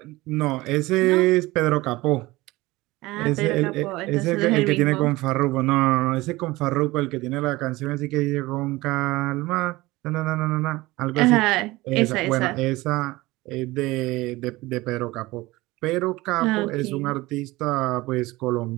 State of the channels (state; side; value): quieter; left; 20.0 dB